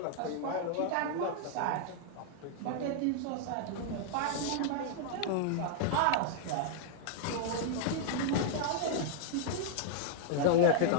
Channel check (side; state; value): both; different; correlation -0.01